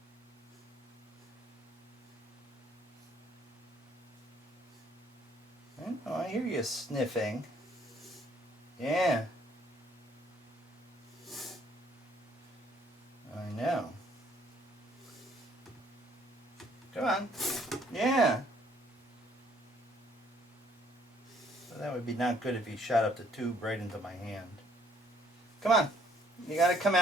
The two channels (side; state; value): both; normal; correlation 0.63